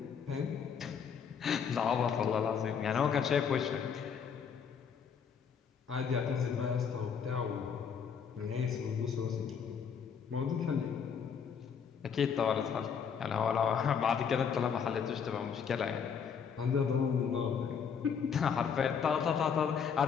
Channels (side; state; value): right; quieter; 6.9 dB